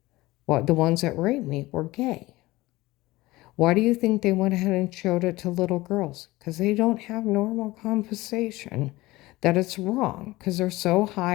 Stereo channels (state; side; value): quieter; right; 19.4 dB